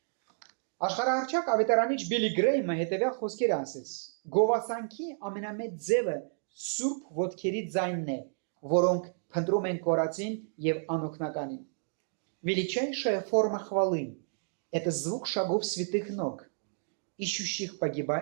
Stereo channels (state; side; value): silent; left; digital silence